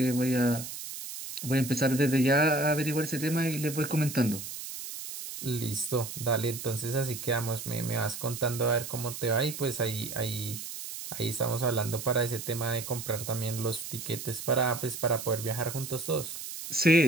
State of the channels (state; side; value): noise; right; hiss, 9 dB below the sound